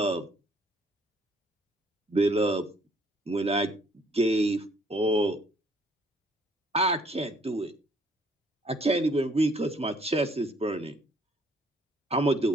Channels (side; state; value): both; normal; correlation 0.63